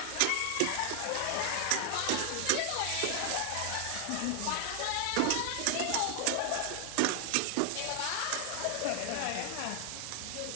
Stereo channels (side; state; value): both; different; correlation 0.00